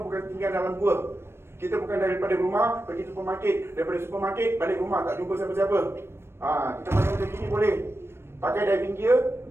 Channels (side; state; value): left; late; 0.12 ms